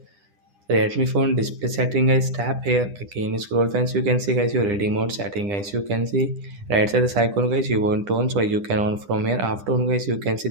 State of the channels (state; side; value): late; left; 9.9 ms